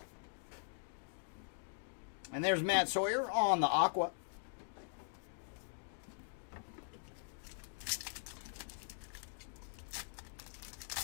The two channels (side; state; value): right; silent; digital silence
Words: And there's Matt Sawyer on the aqua.